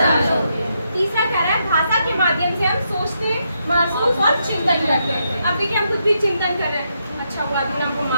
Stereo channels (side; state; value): both; inverted; correlation -0.80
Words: होती है। तीसरा कह रहा है भाषा के माध्यम से हम सोचते, महसूस और चिंतन करते हैं। अब देखिए हम कुछ भी चिंतन कर रहे हैं, अच्छा हुआ आदमी ने हमको